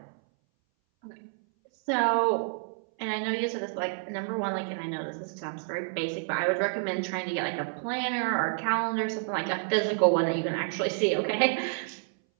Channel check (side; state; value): left; silent; 58 dB below the other